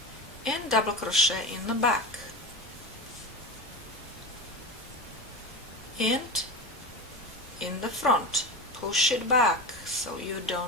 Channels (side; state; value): both; normal; correlation 0.24